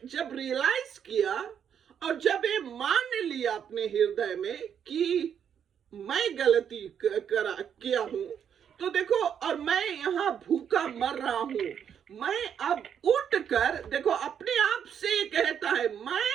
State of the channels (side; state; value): left; quieter; 8.3 dB